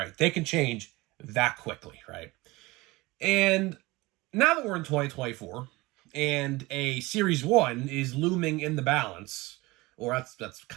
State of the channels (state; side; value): quieter; left; 21.7 dB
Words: They can change that quickly, right? And now that we're in 2024 and a Series 1 is looming in the balance, or that's